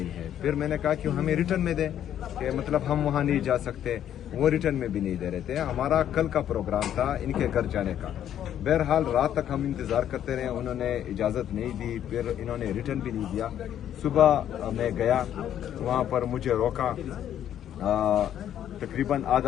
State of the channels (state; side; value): quieter; right; 10.5 dB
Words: ہے۔ پھر میں نے کہا کہ ہمیں ریٹرن میں دیں، کہ مطلب ہم وہاں نہیں جا سکتے، وہ ریٹرن میں بھی نہیں دے رہے تھے۔ ہمارا کل کا پروگرام تھا ان کے گھر جانے کا، بہرحال رات تک ہم انتظار کرتے رہے، انہوں نے اجازت نہیں دی، پھر انہوں نے ریٹرن بھی نہیں دیا۔ صبح میں گیا، وہاں پر مجھے روکا، تقریباً